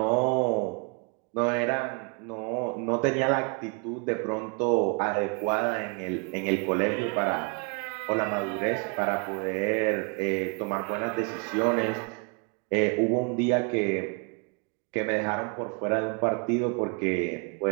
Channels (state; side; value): quieter; left; 34.2 dB